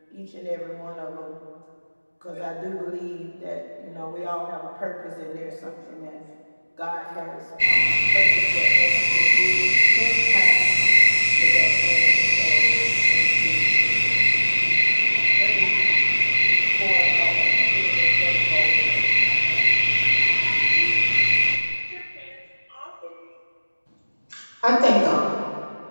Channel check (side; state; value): both; inverted; correlation -1.00